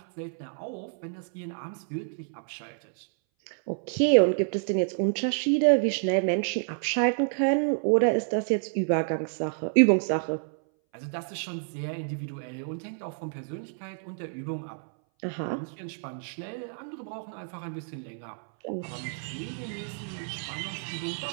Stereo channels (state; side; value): silent; left; 59 dB below the other